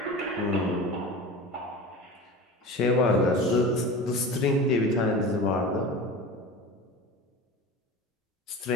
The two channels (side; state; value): both; normal; correlation 0.33